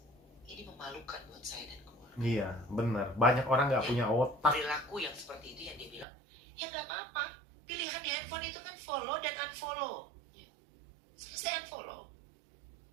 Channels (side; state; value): left; drops out; at 6.1 s